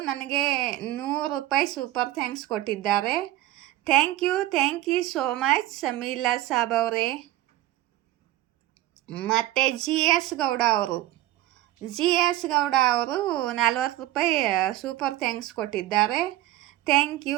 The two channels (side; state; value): left; quieter; 15.4 dB